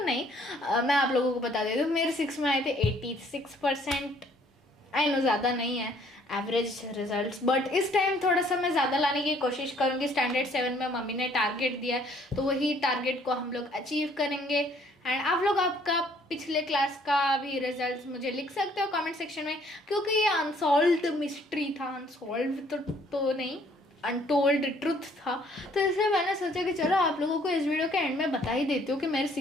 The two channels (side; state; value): both; normal; correlation 0.61